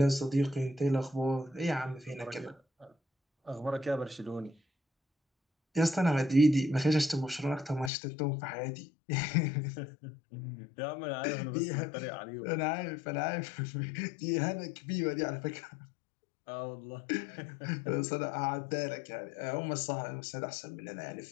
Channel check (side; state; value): right; drops out; at 7.9 s